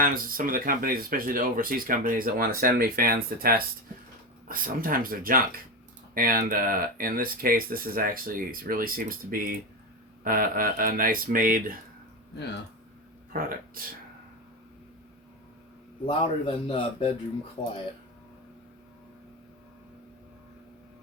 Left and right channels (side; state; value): both; normal; correlation 0.18